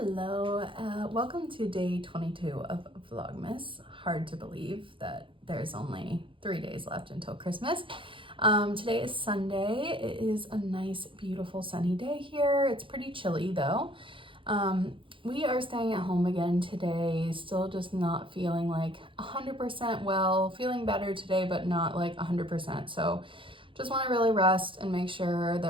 Hello, welcome to day 22 of Vlogmas. Hard to believe that there's only 3 days left until Christmas. Today is Sunday. It is a nice, beautiful sunny day here. It's pretty chilly though. We are staying at home again today, still just not feeling like 100% well, feeling better today, but not like 100%. So just want to really rest and make sure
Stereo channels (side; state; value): left; late; 0.25 ms